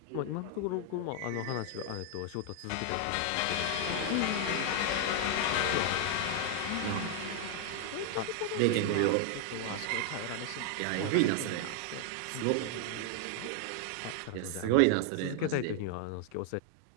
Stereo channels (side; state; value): both; different; correlation 0.00